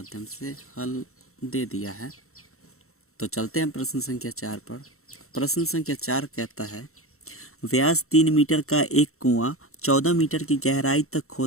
से हल दे दिया है। तो चलते हैं प्रश्न संख्या 4 पर। प्रश्न संख्या 4 कहता है, व्यास 3 मीटर का एक कुआं 14 मीटर की गहराई तक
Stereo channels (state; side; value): late; right; 0.63 ms